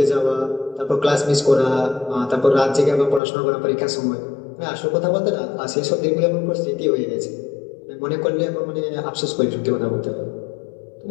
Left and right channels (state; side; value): drops out; right; at 3.2 s